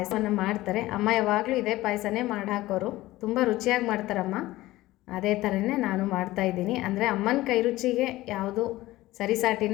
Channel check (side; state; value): right; quieter; 17.4 dB